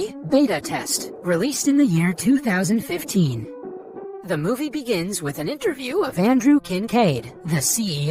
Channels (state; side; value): identical; both; correlation 1.00